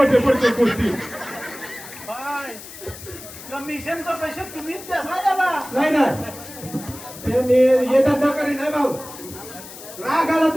पडते गोष्टी कमिशनचा पैसे तुम्हीच द्या नाही ना ते मी येतात नकारी नाही भाऊ राग आला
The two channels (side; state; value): left; noise; hiss, 15 dB below the sound